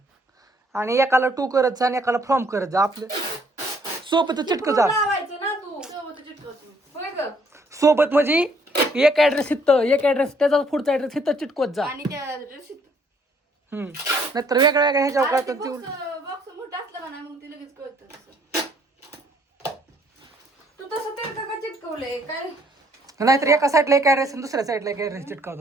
आणि एकाला टू करत जा आणि एकाला फ्रॉम करत जा. आपलं सोबतच चिटकत जा. लावायचं ना तू सोबत चिटकवतो. होय ग सोबत म्हणजे एक ऍड्रेस इथं एक ऍड्रेस त्याचा पुढचा ऍड्रेस इथं चिटकवत जा. आणि त्या नाहीतर वेगळ्या वेगळ्या ह्याच्यावर कळतं ते. बॉक्स मोठा असला का नाही मग ती लगेच कळतं. तू तसं ते का चिटकवलंय काय? नाहीतर एका साईडला एक ऍड्रेस आणि दुसऱ्या साईडला एक ऍड्रेस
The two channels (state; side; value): normal; both; correlation 0.65